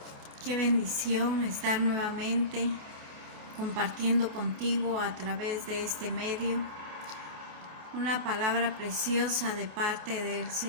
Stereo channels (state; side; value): late; left; 28 ms